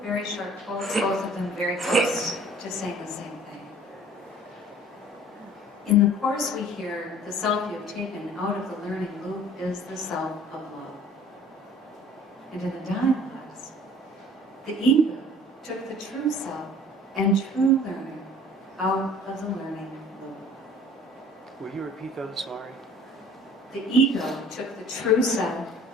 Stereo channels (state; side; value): normal; both; correlation 0.49